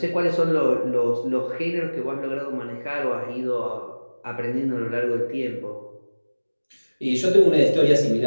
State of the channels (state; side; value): inverted; both; correlation -1.00